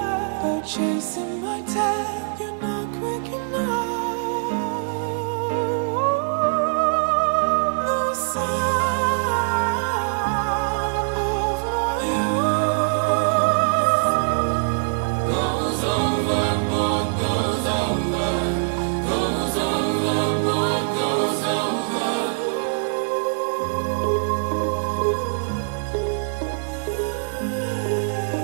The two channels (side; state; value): left; silent; digital silence